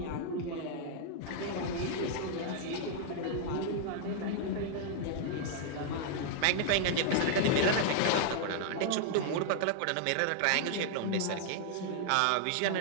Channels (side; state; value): both; different; correlation -0.01